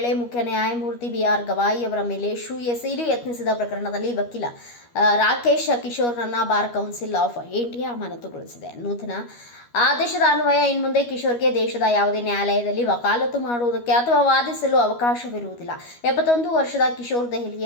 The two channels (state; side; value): late; right; 13 ms